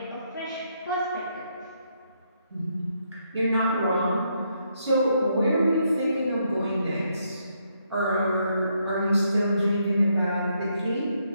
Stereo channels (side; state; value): both; inverted; correlation -0.76